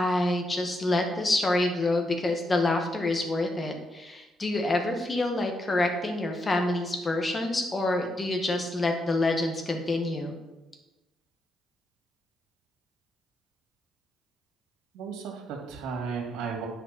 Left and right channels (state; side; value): normal; both; correlation 0.81